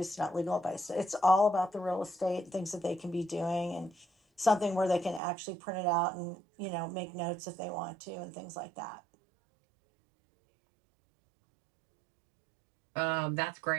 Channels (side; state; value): left; drops out; at 5.2 s